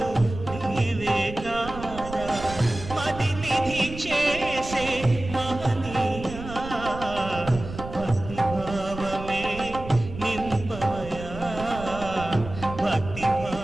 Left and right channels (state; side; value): noise; right; rumble, 11 dB below the sound